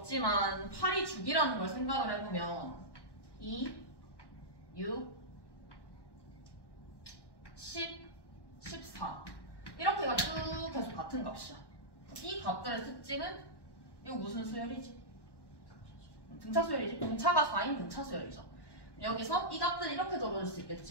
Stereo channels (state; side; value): late; right; 1.1 ms